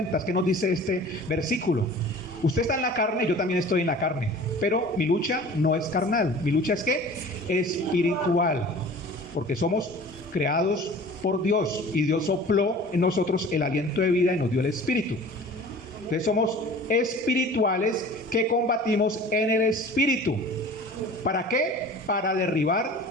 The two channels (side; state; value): both; normal; correlation 0.43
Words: ¿qué nos dice este versículo? Usted está en la carne, yo también estoy en la carne, pero mi lucha no es carnal. Mi lucha es ¿qué? Espiritual, porque somos creados por Dios, y Dios sopló en nosotros el aliento de vida y nos dio el espíritu. Entonces somos espirituales que combatimos en el espíritu. ¿Para qué? Para derribar